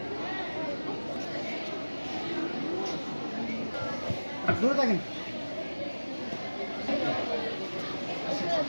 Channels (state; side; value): inverted; both; correlation -1.00